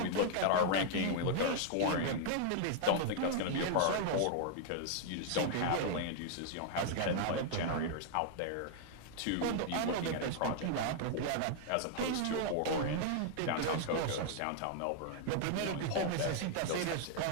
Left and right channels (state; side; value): different; both; correlation -0.01